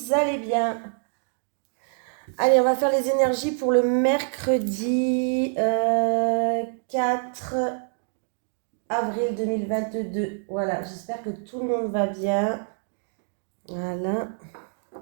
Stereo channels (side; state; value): left; silent; digital silence